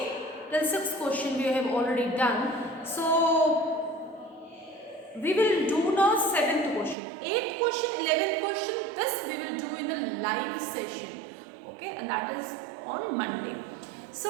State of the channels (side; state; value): left; drops out; at 7.0 s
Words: till 6th question we have already done. So we will do now 7th question, 8th question, 11th question. This we will do in a live session. Okay, and that is on Monday.